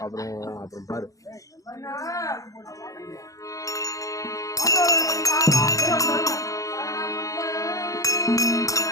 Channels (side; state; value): right; late; 0.16 ms